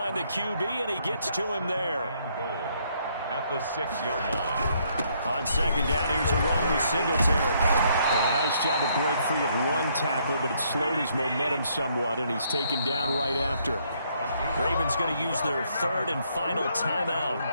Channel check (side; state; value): both; inverted; correlation -0.70